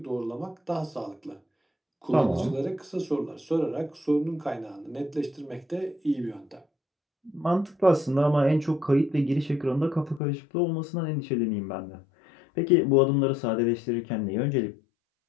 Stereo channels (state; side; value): drops out; right; at 10.2 s